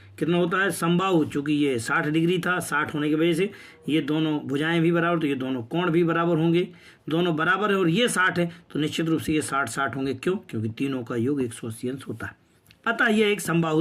कितना होता है? समबाहु, चूंकि ये 60 डिग्री था, 60 होने की वजह से ये दोनों भुजाएं भी बराबर, तो ये दोनों कोण भी बराबर होंगे, दोनों बराबर है और ये 60 है तो निश्चित रूप से ये 60 होंगे। क्यों? क्योंकि तीनों का योग 180 अंश होता है। अतः ये एक समबाहु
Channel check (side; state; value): both; identical; correlation 1.00